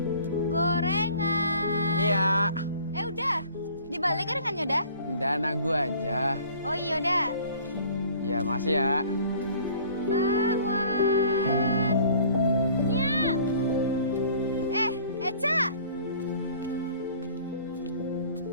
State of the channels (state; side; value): inverted; both; correlation -0.51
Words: Gorengan. Iya. Udah. Dibalik gorengannya udah? Dana gua aja. Oh iya udah. Ya, makasih ya. Bakwan. Nya. Eca.